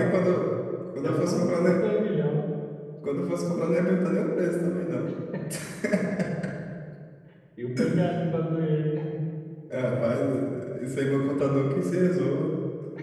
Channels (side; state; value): both; identical; correlation 1.00